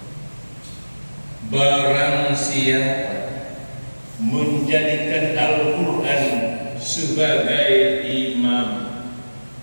siapa menjadikan Al-Quran sebagai imam.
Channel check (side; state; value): both; inverted; correlation -1.00